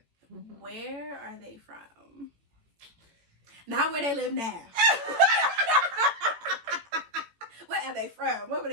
where are they from? Not where they live now. Where are they from? Where were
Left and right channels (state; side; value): late; left; 18 ms